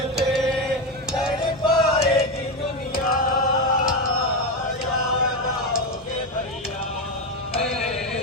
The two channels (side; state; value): both; normal; correlation 0.13